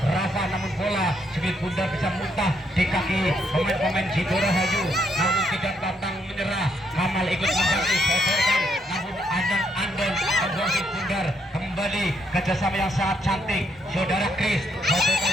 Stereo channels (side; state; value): both; normal; correlation 0.75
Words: namun bola sedikit bundar bisa muntah di kaki pemain-pemain Sidorahayu, namun tidak pantang menyerah. Kamal ikut membantu sodorkan, namun Andon membuang sedikit bundar. Kembali kerjasama yang sangat cantik saudara Chris